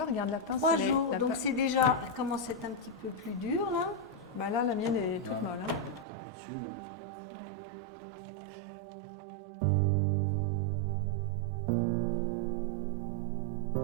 regarde la pince. 3 elle est- jours, la donc pince- c'est déjà, elle commence à être un petit peu plus dur là. Bah là, la mienne est toute Ouais. molle. Hein. T'appuies dessus, là. Ouais.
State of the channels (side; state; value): left; drops out; at 6.1 s